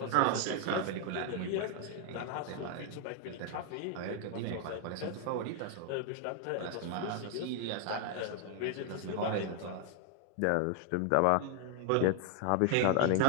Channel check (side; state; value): both; different; correlation 0.00